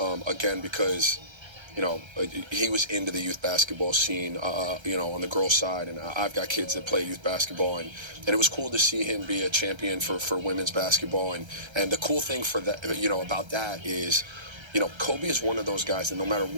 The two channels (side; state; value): left; late; 1.3 ms